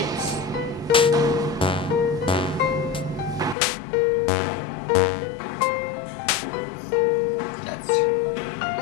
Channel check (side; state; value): right; drops out; at 3.6 s